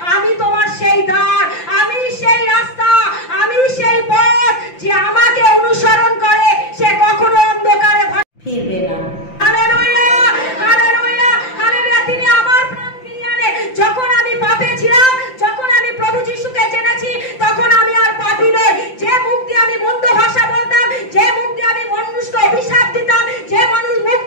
আমি তোমার সেই দ্বার, আমি সেই রাস্তা, আমি সেই পথ। যে আমাকে অনুসরণ করে সে কখনো অন্ধকারে ফিরবে না। Hallelujah, hallelujah, hallelujah. তিনি আমার প্রাণ ফিরিয়ে আনে। যখন আমি পাপে ছিলাম, যখন আমি প্রভু যিশুকে জেনেছি, তখন আমি আর পাপী নই। যে মুখ দিয়ে আমি মন্দ ভাষা বলতাম, যে মুখ দিয়ে আমি মানুষকে অভিশাপ দিতাম, যে মুখ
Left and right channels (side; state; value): right; late; 5.8 ms